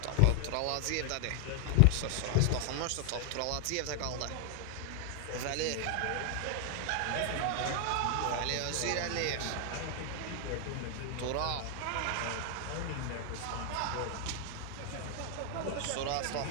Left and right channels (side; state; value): both; different; correlation 0.00